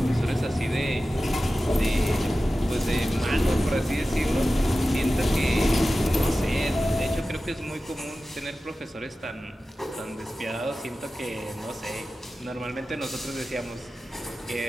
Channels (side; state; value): both; normal; correlation 0.95